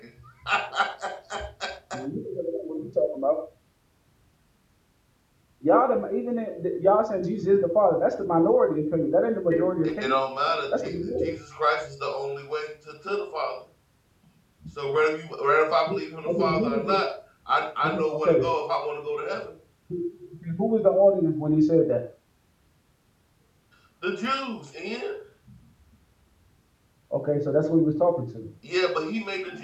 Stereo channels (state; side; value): identical; both; correlation 1.00